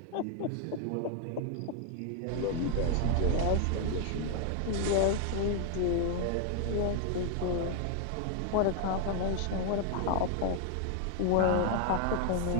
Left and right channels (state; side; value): different; both; correlation 0.00